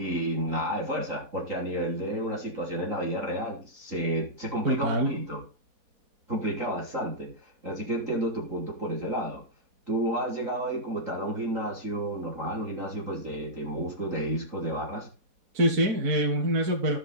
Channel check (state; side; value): late; left; 4.1 ms